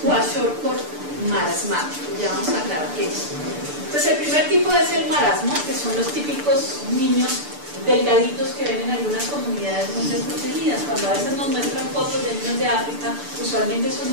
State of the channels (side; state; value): left; late; 6.8 ms